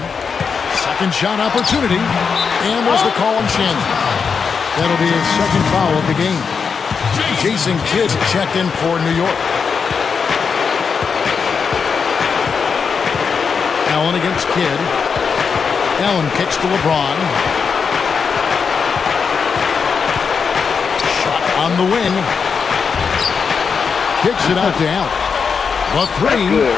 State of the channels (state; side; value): quieter; right; 5.8 dB